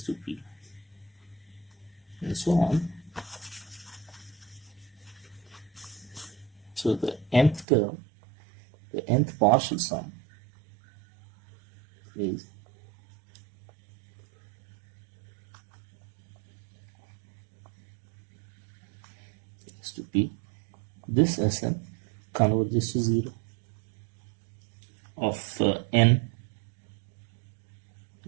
to p, and so on. So the nth term, the nth partial sum is x to p. This Sn converges to 0 of n,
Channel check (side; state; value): left; drops out; at 7.7 s